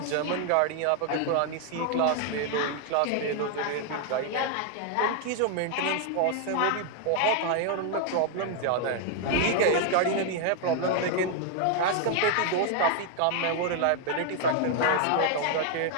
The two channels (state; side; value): different; both; correlation 0.00